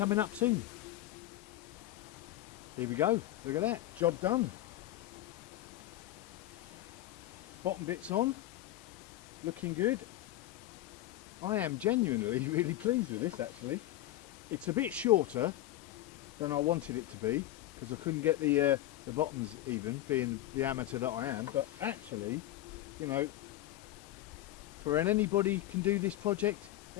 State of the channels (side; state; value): right; quieter; 14.7 dB